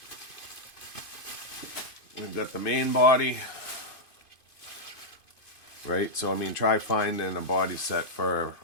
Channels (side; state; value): right; late; 2.5 ms